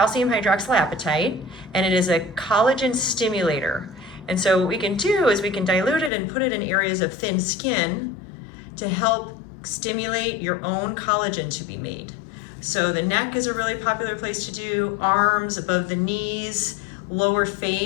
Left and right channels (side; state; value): right; drops out; at 6.1 s